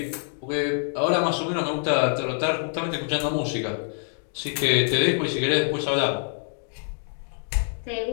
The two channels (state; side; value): silent; right; digital silence